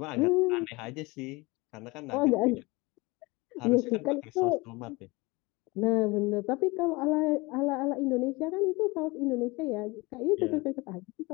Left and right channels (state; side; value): quieter; right; 24.0 dB